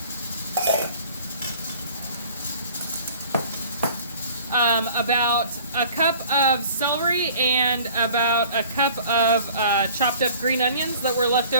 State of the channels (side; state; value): both; inverted; correlation -0.49